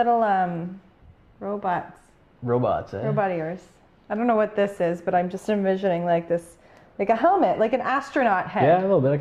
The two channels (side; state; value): both; identical; correlation 1.00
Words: robots. Robots, eh? Robot ears. I don't know what this is, but I'm just envisioning like this, like a helmet, like an astronaut head. Yeah, a little bit. I